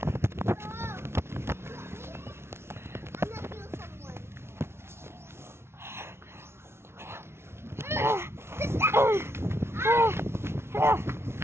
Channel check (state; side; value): late; left; 0.12 ms